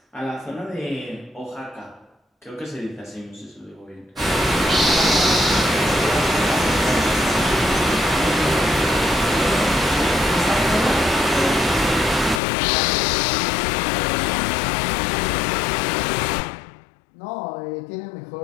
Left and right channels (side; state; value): right; drops out; at 12.4 s